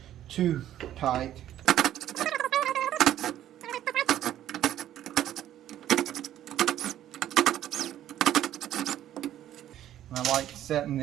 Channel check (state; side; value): quieter; left; 12.0 dB